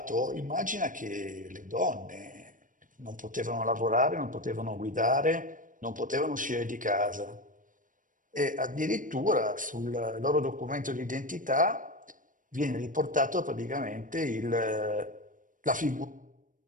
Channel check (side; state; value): left; late; 0.38 ms